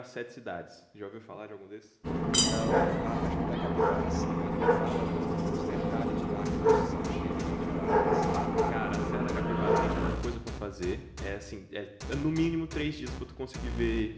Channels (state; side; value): identical; both; correlation 1.00